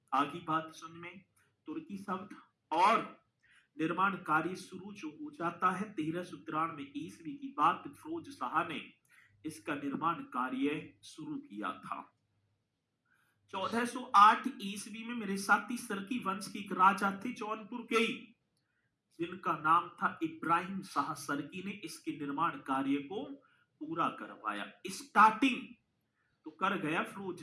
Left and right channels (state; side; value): identical; both; correlation 1.00